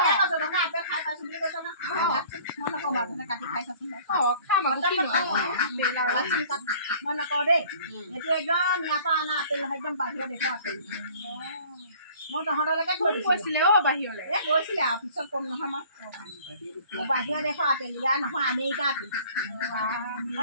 আপেল খাই পাইছো বুলি কৈছ না মই নকওঁ বাৰু কাটি খাই চাচোন খাম আকৌ মই নকওঁ দেই এইটো একদম ইয়াৰ পৰা অনা আপেল নহয় একদম বাহিৰৰ দেশৰ আপেল মই তহঁতলৈকে থৈ কৈছিলে বাহিৰলৈ গৈছিলে আৰু পিছত কম নহয় মই বাহিৰৰ দেশৰ আপেল ইয়াৰ নহয় আমেৰিকা আপেল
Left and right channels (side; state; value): both; inverted; correlation -0.51